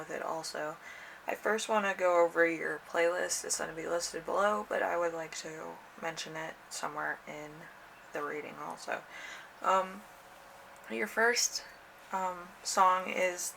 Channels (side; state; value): both; identical; correlation 1.00